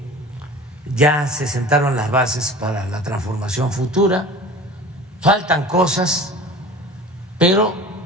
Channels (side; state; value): both; normal; correlation 0.40